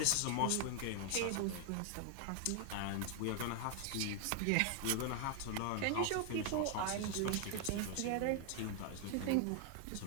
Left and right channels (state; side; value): different; both; correlation 0.00